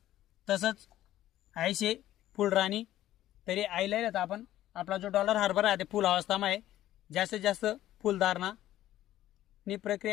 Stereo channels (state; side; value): quieter; right; 13.7 dB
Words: तसंच 80 फुल राणी. तरी आयला येत आपण आपला जो डॉलर हरभरा आहे ते फुल अवस्थामा आहे, जास्तीत जास्त फुलधारणा नी